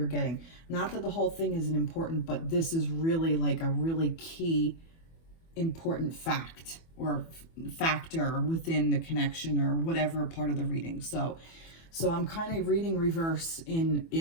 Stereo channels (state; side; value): late; right; 24 ms